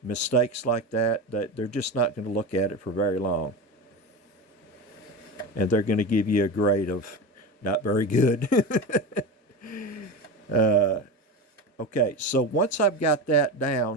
mistakes like that they're just not going to look at it for very long. And they're going to give you a grade of not very good. Okay, so once I've got that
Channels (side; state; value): both; normal; correlation 0.23